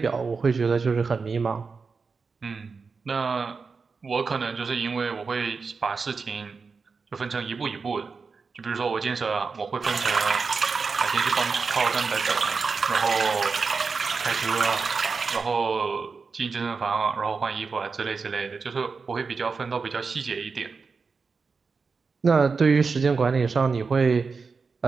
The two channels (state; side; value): quieter; left; 4.9 dB